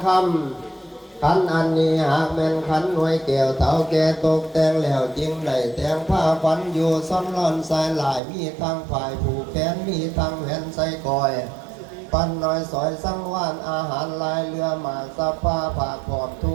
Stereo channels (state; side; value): drops out; left; at 8.2 s